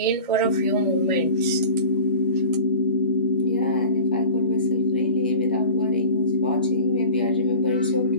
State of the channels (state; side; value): inverted; both; correlation -0.39